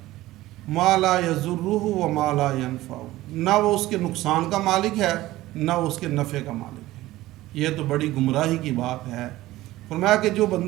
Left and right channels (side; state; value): left; quieter; 16.7 dB